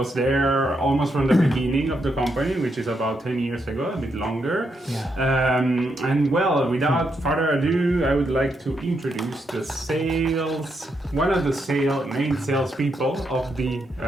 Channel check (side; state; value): both; normal; correlation 0.80